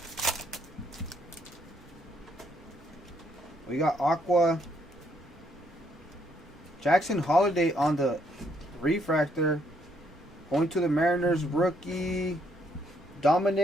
We got Aqua. Jackson Holiday on the Refractor. Going to the Mariners, rookie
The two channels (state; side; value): normal; both; correlation 0.71